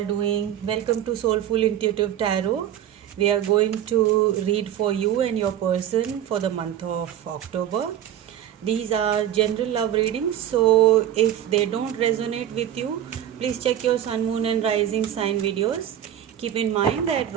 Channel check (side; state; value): left; quieter; 10.9 dB